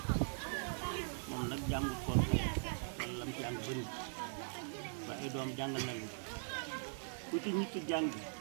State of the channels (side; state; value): left; silent; digital silence